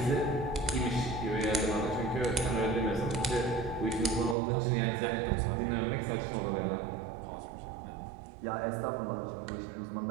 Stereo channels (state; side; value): drops out; left; at 4.4 s